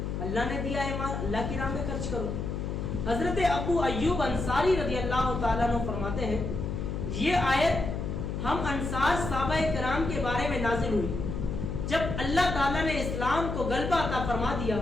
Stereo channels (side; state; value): left; noise; hum, 3 dB below the sound